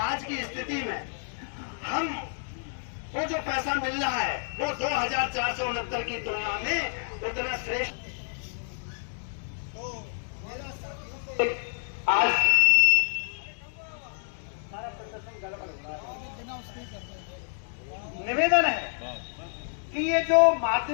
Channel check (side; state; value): right; silent; digital silence